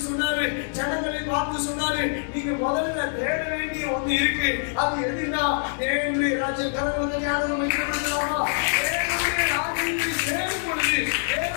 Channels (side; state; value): right; silent; 62 dB below the other